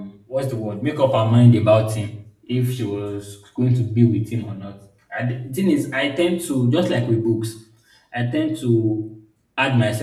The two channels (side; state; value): both; identical; correlation 1.00